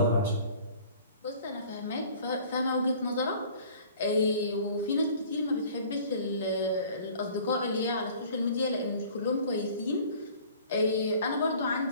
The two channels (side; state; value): both; inverted; correlation -0.50